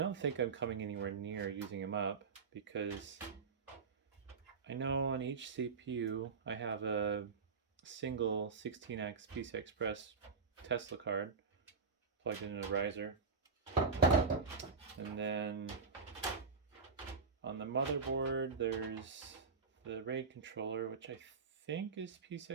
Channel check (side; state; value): left; quieter; 5.0 dB